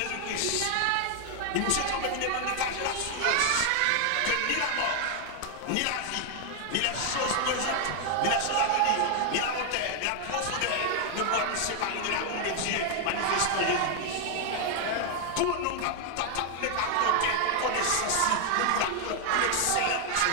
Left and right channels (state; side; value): different; both; correlation 0.00